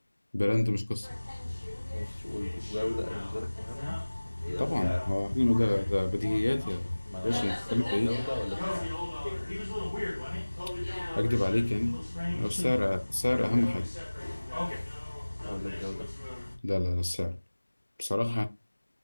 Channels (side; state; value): both; inverted; correlation -1.00